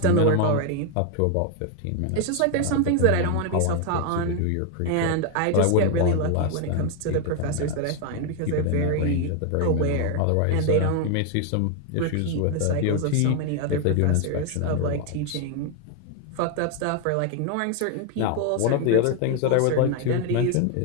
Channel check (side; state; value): both; different; correlation 0.01